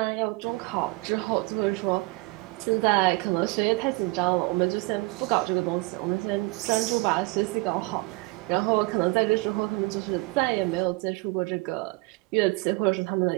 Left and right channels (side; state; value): left; quieter; 24.2 dB